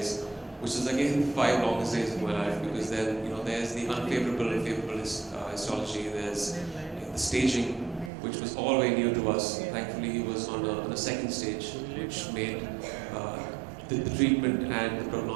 which is again 5 longest days of my life, because then there's the unfavorable and favorable histology, there's the staging, which was all very new to us. Thankfully, he was on a second stage, which made the treatment and the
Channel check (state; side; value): drops out; left; at 8.1 s